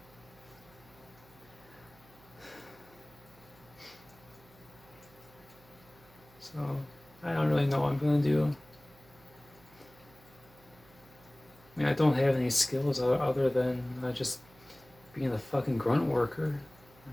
So I don't really know what I'm gonna do. I mean, I don't have any skills other than just being a fucking grunt worker.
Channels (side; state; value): right; noise; hum, 26 dB below the sound